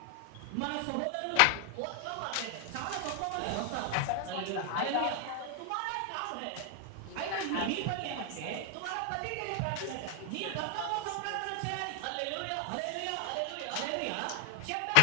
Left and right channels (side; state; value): both; different; correlation 0.00